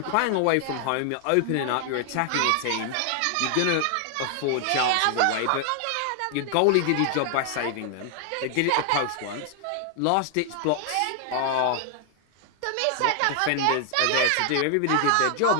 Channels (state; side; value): different; both; correlation 0.00